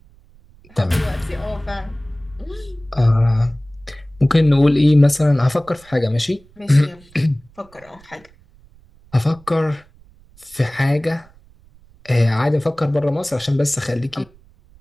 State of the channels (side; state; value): right; noise; rumble, 27 dB below the sound